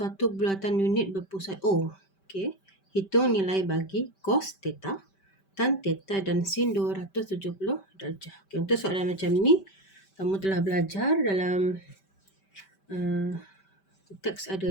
bulatan unit berpusat O. Okay. Hitung nilai bagi cos theta, tan theta dan sin 270 darjah. Okay, untuk soalan macam ni, kamu telah belajar dalam teks ada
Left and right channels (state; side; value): late; right; 5.2 ms